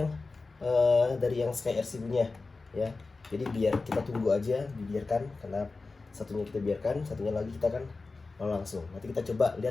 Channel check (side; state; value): right; quieter; 3.8 dB